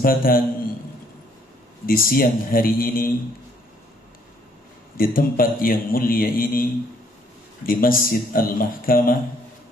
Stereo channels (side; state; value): both; normal; correlation 0.65